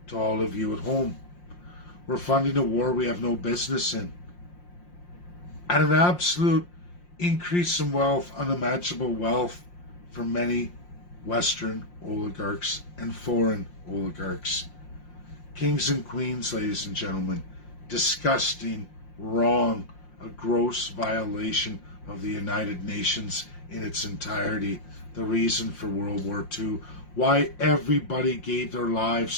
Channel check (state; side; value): late; right; 5.7 ms